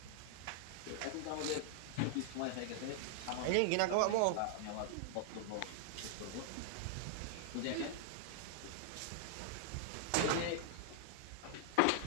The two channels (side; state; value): both; different; correlation -0.01